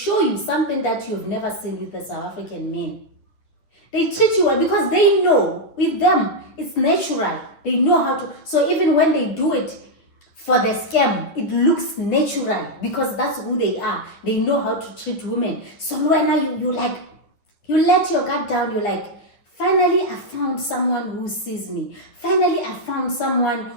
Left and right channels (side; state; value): right; late; 10 ms